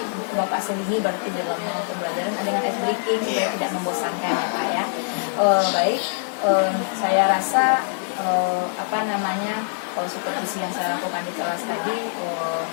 Bapak sendiri berarti dalam pembelajaran dengan ice breaking supaya tidak membosankan ya Pak ya. Baik, saya rasa kalau supervisi yang saya lakukan di kelas tadi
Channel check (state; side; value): silent; right; 63 dB below the other